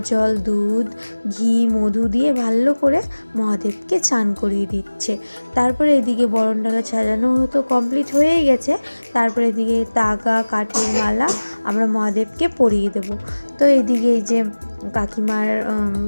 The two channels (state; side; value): inverted; both; correlation -1.00